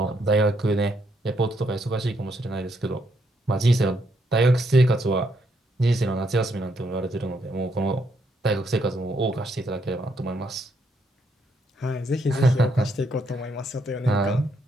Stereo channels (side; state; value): both; normal; correlation 0.75